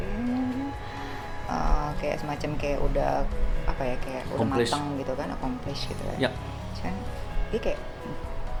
kayak semacam kayak udah apa ya, kayak udah Accomplish. matang gitu kan, accomplish gitu Ya. kan. Ini kayak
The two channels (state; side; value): identical; both; correlation 1.00